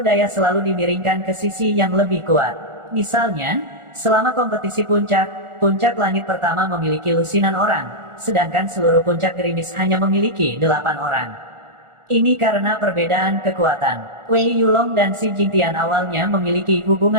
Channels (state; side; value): late; left; 1.4 ms